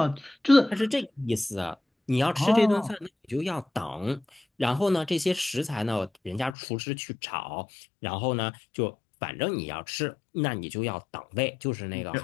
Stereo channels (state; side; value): drops out; right; at 6.6 s